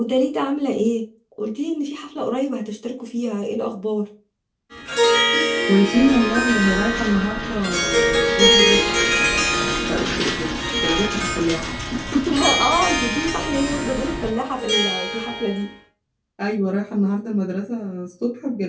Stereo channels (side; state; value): both; identical; correlation 1.00